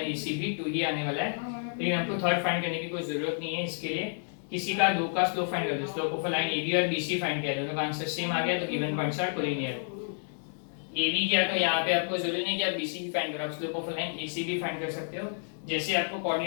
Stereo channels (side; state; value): right; silent; digital silence